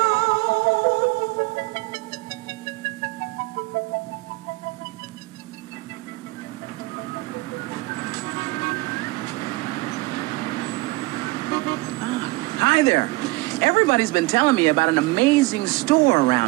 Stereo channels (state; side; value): quieter; left; 23.0 dB